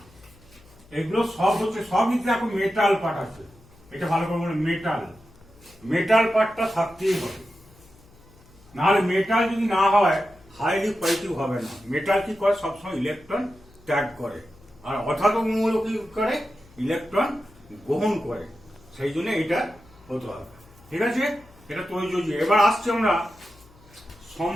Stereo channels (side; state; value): left; noise; hum, 26 dB below the sound